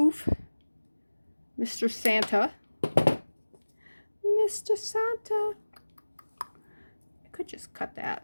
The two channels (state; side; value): inverted; both; correlation -1.00